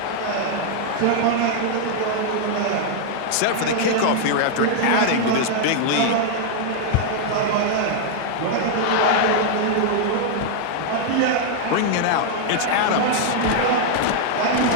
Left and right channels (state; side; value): different; both; correlation -0.01